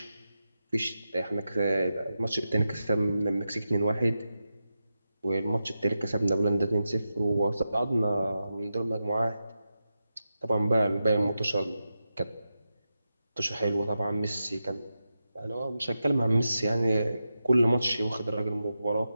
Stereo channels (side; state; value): both; inverted; correlation -0.90